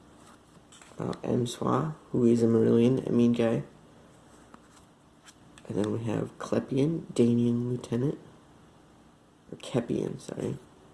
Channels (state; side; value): identical; both; correlation 1.00